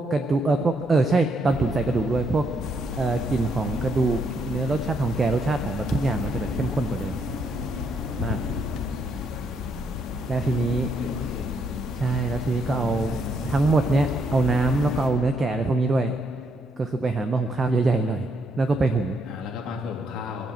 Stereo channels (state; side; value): normal; both; correlation 0.74